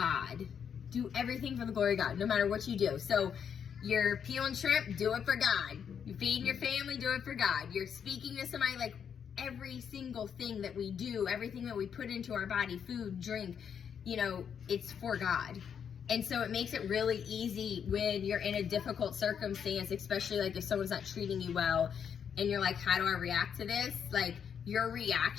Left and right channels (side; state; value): right; quieter; 7.7 dB